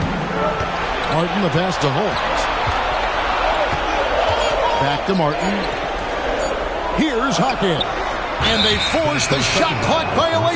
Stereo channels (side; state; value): both; identical; correlation 1.00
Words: Martin, the pass to Holmes. Back to Martin. Here's Hawkins. And they force the shot clock